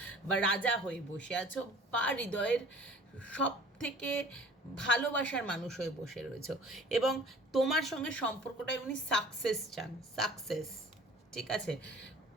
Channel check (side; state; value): both; normal; correlation 0.47